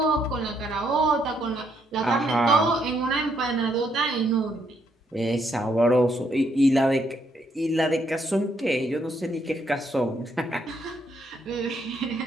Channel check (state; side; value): normal; both; correlation 0.74